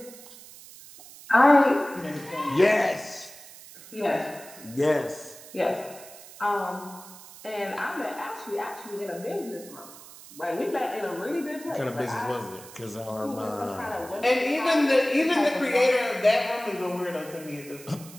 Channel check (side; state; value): right; noise; hiss, 18 dB below the sound